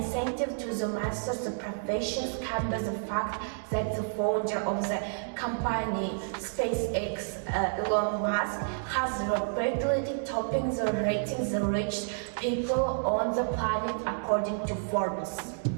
to the master's professions comes by the fact that the founder of the company SpaceX, Elon Musk, has repeatedly topping the ratings the rich people on the planet according to Forbes.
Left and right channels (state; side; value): silent; left; digital silence